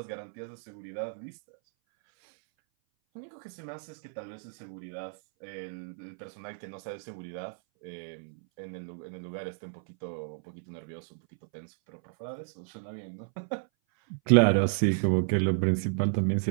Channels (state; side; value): silent; left; 56 dB below the other